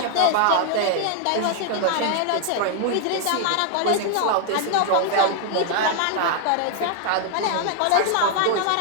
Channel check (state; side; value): different; both; correlation 0.00